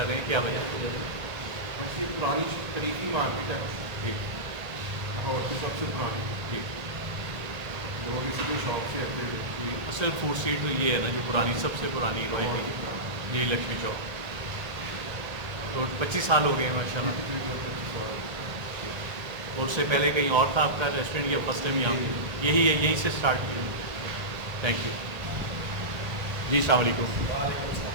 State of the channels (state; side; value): late; left; 1.3 ms